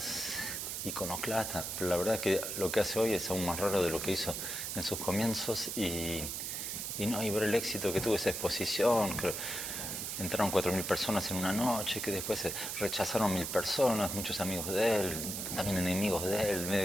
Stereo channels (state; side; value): noise; right; hiss, 4 dB below the sound